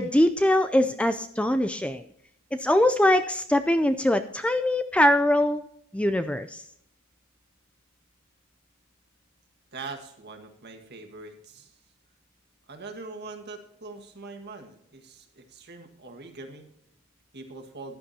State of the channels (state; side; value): normal; both; correlation 0.84